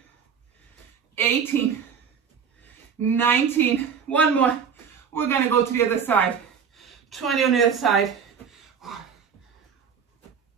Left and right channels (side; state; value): left; quieter; 7.0 dB